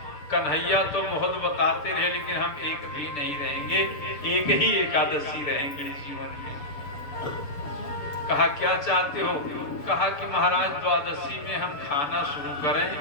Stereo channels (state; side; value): late; right; 6.9 ms